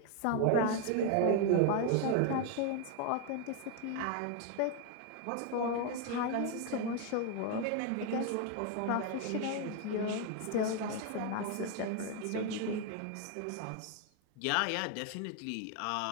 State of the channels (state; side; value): different; both; correlation 0.01